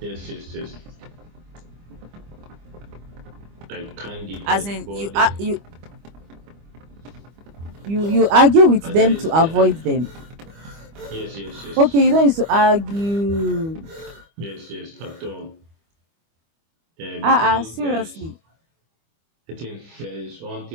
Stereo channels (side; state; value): left; late; 25 ms